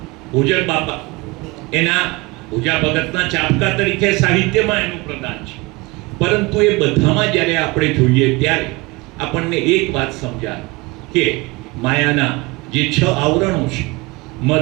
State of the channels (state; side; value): quieter; left; 24.0 dB